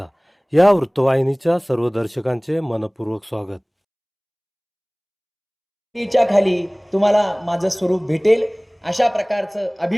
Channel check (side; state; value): both; identical; correlation 1.00